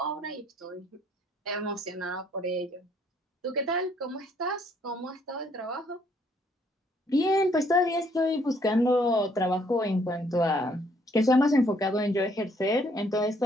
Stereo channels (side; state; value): both; normal; correlation 0.66